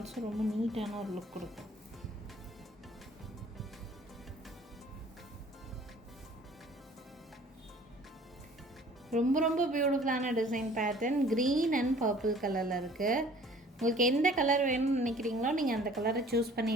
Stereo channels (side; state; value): both; normal; correlation 0.52